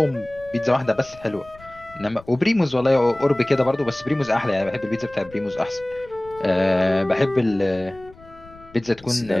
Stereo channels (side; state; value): left; noise; rumble, 23 dB below the sound